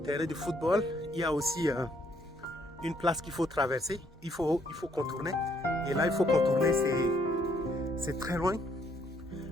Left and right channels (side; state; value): both; normal; correlation 0.69